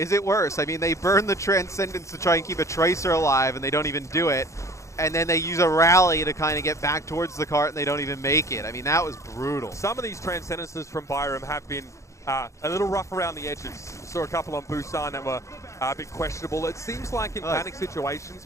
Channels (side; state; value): right; late; 0.15 ms